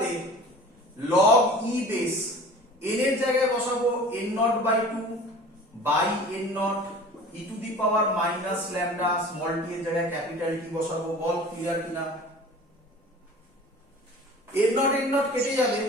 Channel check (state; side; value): normal; both; correlation 0.42